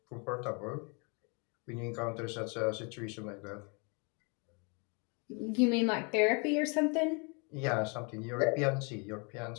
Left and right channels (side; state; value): right; quieter; 33.7 dB